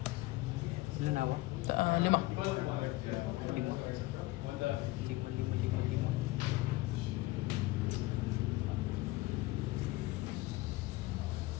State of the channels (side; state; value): right; quieter; 19.4 dB